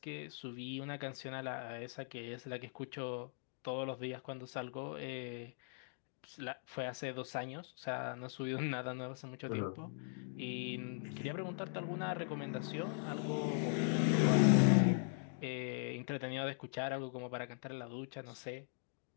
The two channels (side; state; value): right; silent; digital silence